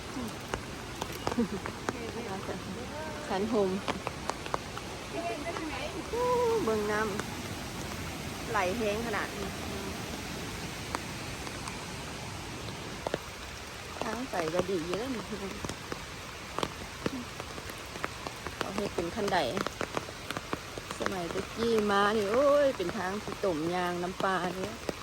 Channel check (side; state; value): left; noise; hum, 21 dB below the sound